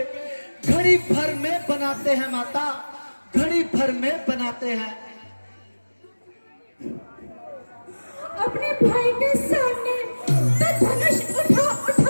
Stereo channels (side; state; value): both; inverted; correlation -1.00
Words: घड़ी भर में बनाते हैं माता, घड़ी भर में बनाते हैं। अपने भाई के सामने तो धनुष